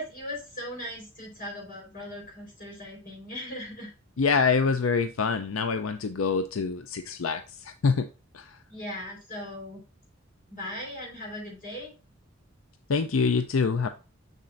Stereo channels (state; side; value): quieter; right; 4.4 dB